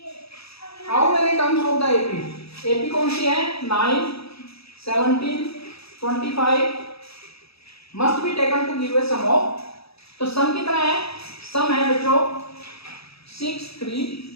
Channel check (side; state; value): right; late; 0.77 ms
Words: how many terms of the AP, AP कौन सी है, 9 17 25 must be taken to give a sum of. तो सम कितना है, सम है बच्चों 6 3